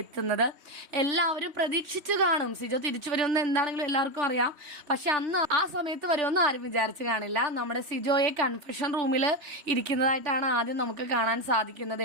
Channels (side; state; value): left; late; 3.1 ms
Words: എത്തുന്നത്. എല്ലാവരും പ്രതീക്ഷിച്ചു കാണും സിജോ തിരിച്ചു വരുമെന്ന്. എന്താണെങ്കിലും എല്ലാവർക്കും അറിയാം. പക്ഷെ അന്ന് ആ സമയത്ത് വരുമെന്ന് ആരും വിചാരിച്ചു കാണില്ല. നമ്മുടെ സിജോയെ കൺഫെഷൻ റൂമിൽ ഇരിക്കുന്നതായിട്ടാണ് ആദ്യം നമുക്ക് കാണാൻ സാധിക്കുന്നത്